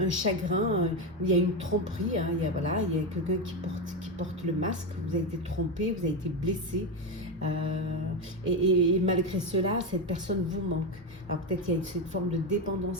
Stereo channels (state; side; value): normal; both; correlation 0.11